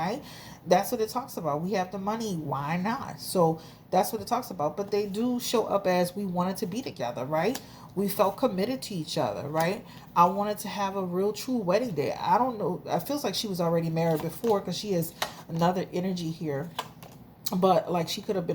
That's what it talks about. We have the money. Why not? So that's what it talks about. But they do show up as we wanted to be together, right? We felt committed to each other, right? I wanted to have a real true wedding day. I don't know. It feels like she was already married before, because she has another energy here. But like, she could have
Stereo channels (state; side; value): identical; both; correlation 1.00